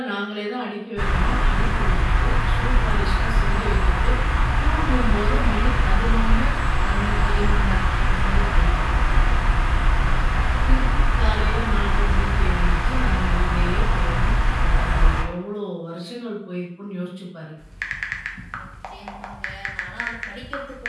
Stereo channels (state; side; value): identical; both; correlation 1.00